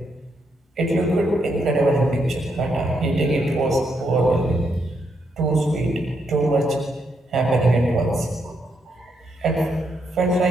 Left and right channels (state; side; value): normal; both; correlation 0.78